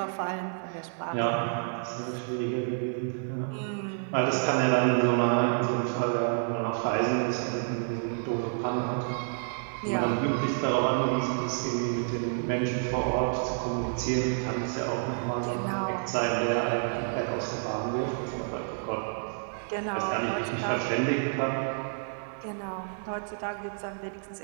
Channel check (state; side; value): silent; left; 58 dB below the other